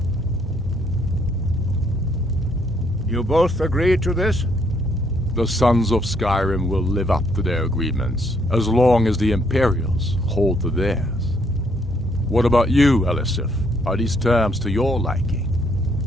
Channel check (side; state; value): right; noise; hum, 13 dB below the sound